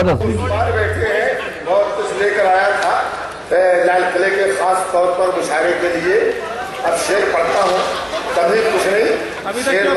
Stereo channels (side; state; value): both; identical; correlation 1.00